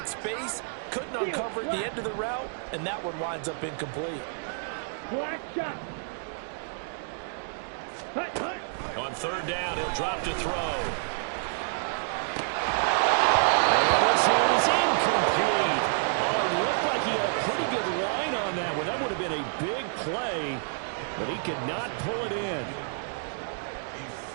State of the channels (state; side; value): silent; left; digital silence